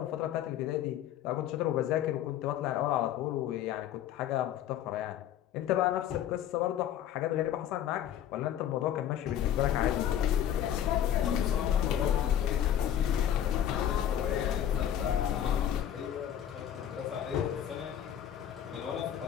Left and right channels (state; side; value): quieter; right; 10.5 dB